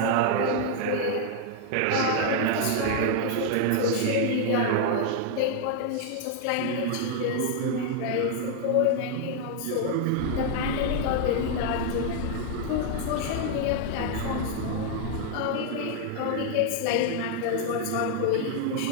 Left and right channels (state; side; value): different; both; correlation 0.00